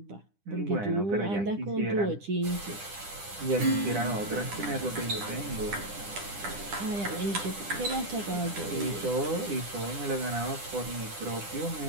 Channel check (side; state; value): left; late; 10 ms